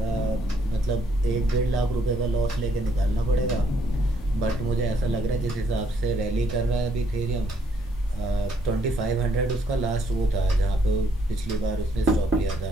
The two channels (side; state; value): both; normal; correlation 0.70